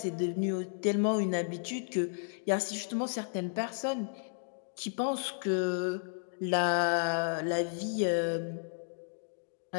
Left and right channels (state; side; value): silent; right; digital silence